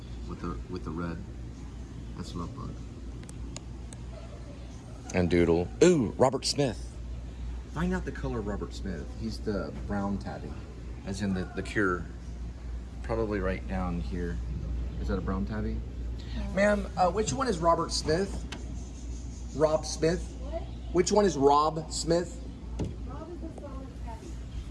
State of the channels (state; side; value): identical; both; correlation 1.00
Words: with the red. That's Lovebug. And Doodle. Ooh, Robert Smith. Find out the color of Robert Smith. He's the brown tabby, as in the Cure. Probably right down here. Is that a brown tabby? Ma'am, which one is Robert Smith? Rob Smith? What? Which one is Rob Smith? Rob is the brown tabby.